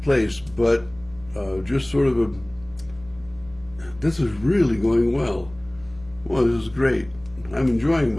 place, but just sort of this is really going well. Well, this is great. I'm enjoying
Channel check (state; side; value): noise; right; rumble, 23 dB below the sound